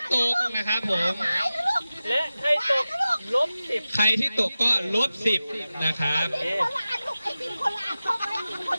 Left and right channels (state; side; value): inverted; both; correlation -0.95